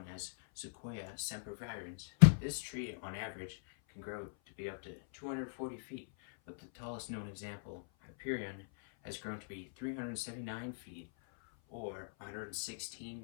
as Sequoia sempervirens, this tree on average can grow to be up to 240 feet, but the tallest known example, Hyperion, has grown to be 379 feet or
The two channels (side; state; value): right; silent; 51 dB below the other